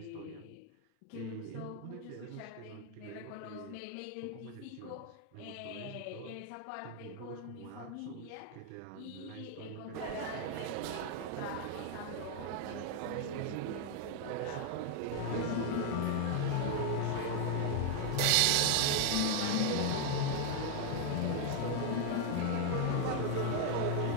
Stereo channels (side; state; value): both; different; correlation 0.00